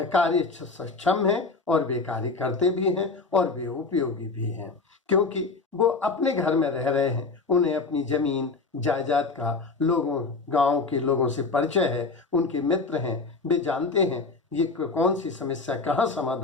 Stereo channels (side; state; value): right; quieter; 4.0 dB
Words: सक्षम हैं और वे कार्य करते भी हैं और वे उपयोगी भी हैं, क्योंकि वो अपने घर में रह रहे हैं। उन्हें अपनी जमीन जायदाद का लोगों, गांव के लोगों से परिचय है, उनके मित्र हैं, वे जानते हैं ये कौन सी समस्या कहाँ